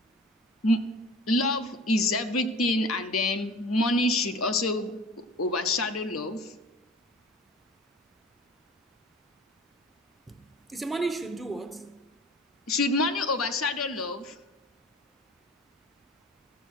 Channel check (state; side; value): normal; both; correlation 0.41